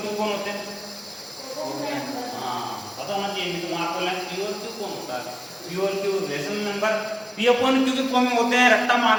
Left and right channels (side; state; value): both; identical; correlation 1.00